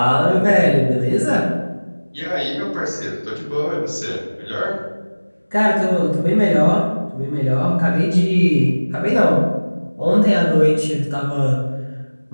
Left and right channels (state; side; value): inverted; both; correlation -1.00